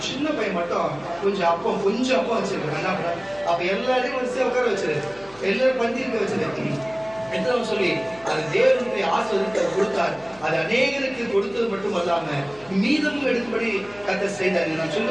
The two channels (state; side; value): noise; left; hum, 25 dB below the sound